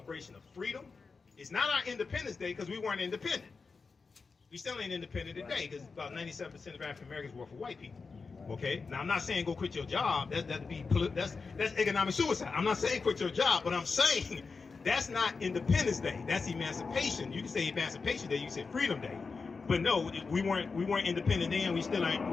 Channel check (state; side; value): quieter; right; 4.6 dB